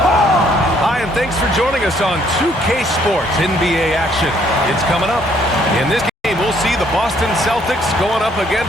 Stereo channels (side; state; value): both; normal; correlation 0.65